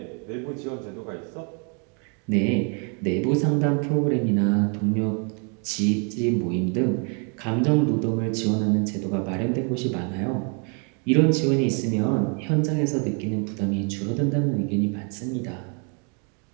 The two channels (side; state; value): left; quieter; 37.9 dB